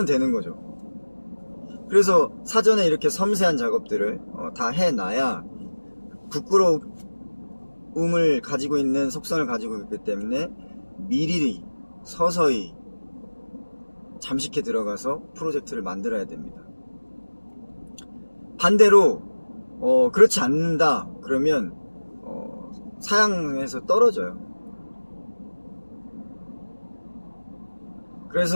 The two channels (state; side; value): inverted; both; correlation -1.00